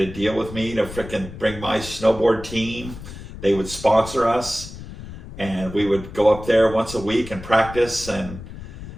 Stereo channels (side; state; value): left; noise; rumble, 13 dB below the sound